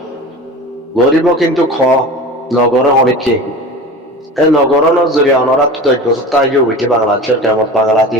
গরিব কিন্তু নগরে অনেকে এই নগরের জরিয়া ওনারা তো 10 বছর তাই উঠে বাংলাদেশের কেমন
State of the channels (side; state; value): both; normal; correlation 0.34